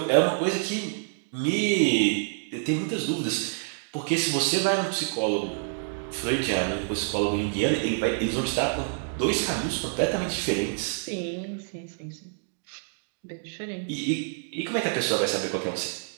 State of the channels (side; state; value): left; silent; digital silence